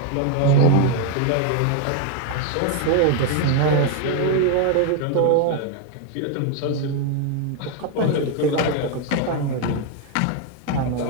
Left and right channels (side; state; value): both; different; correlation 0.01